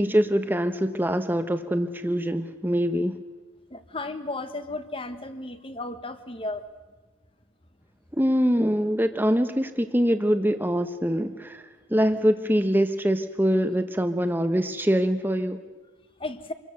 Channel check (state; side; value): normal; both; correlation 0.90